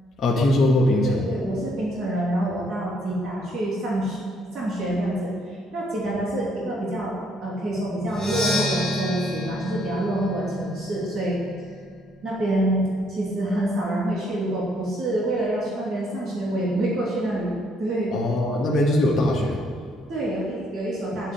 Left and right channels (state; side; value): normal; both; correlation 0.69